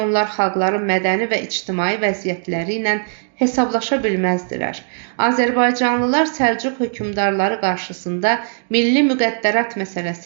onlar xalqların mədəni və ictimai vəziyyətləri ilə hesablaşa bilməzdilər. Azərbaycanlılar Səlcuq hökmdarları qarşısında milli müqəddərat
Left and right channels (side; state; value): left; silent; digital silence